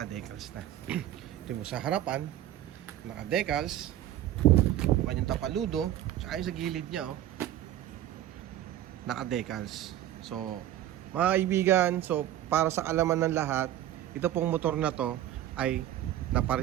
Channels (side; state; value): left; quieter; 12.6 dB